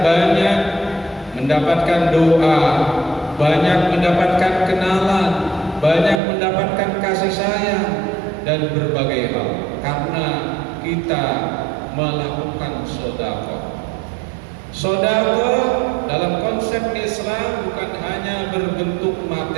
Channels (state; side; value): drops out; left; at 6.2 s